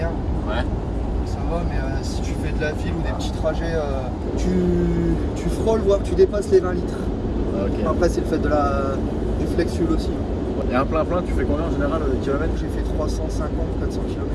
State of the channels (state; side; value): identical; both; correlation 1.00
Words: Ouais. Ça va, mais si tu fais de la ville ou des petits trajets, tu frôles, voire tu dépasses les 20 litres. Ok. Après, c'est le fait du flex fuel aussi. Et un plein j'ai fait combien en général de kilomètres? J'ai fait 350, 400 km.